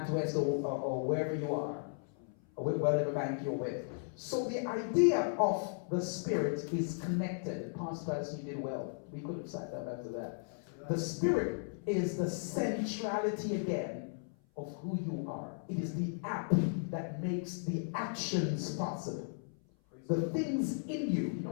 or wherever you are, or whatever bank you're with. So the idea of the spirit is connected. Pastor Patterson, you did well. We could have sat down after that. The spirit is the centrality again of who you are. It is the app that makes the actions possible. The things in you. You know,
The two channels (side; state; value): right; silent; 54 dB below the other